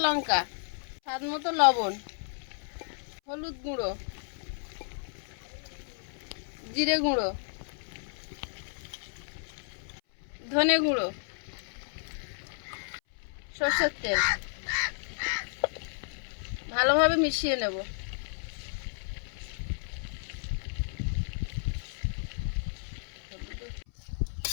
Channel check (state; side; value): silent; right; 56 dB below the other